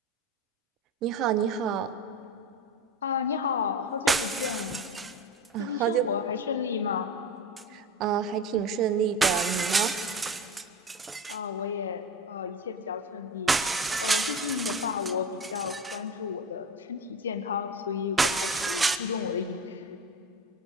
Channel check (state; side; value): normal; both; correlation 0.30